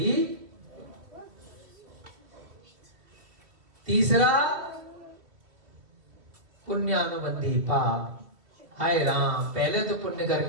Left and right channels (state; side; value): late; left; 2.5 ms